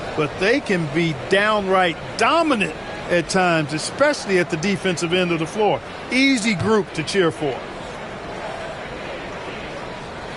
but they can be downright dominant at times, especially at the defensive end of the floor. Easy group to cheer for.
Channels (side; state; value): both; identical; correlation 1.00